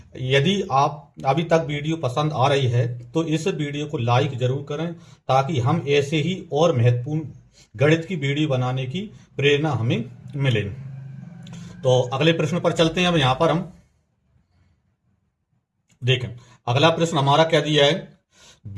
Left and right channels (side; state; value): both; identical; correlation 1.00